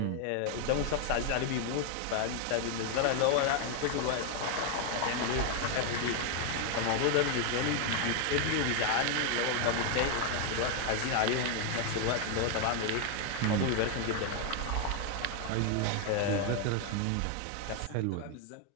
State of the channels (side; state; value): both; different; correlation 0.01